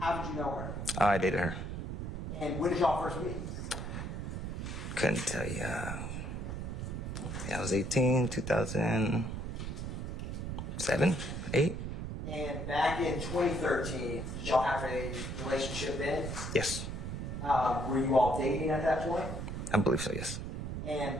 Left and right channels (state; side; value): noise; right; rumble, 5 dB below the sound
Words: did you know her? I dated her. And when did y'all first meet? Couldn't tell you. I was 18, 2007, 8. And back in 2013, did y'all have a relationship then? Yes. Were you all dating at that point? I believe so, yes. And